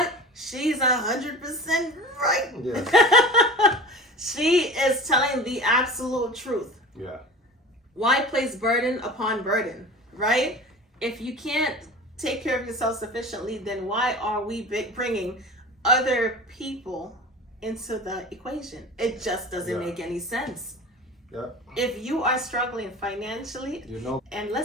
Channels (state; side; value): normal; both; correlation 0.36